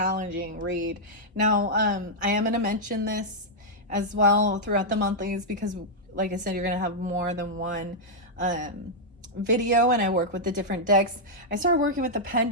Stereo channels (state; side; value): normal; both; correlation -0.06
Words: read. Now I am going to mention this as well throughout the monthlies because, like I said, you're going to have more than one video, and I work with the different decks. I started working with the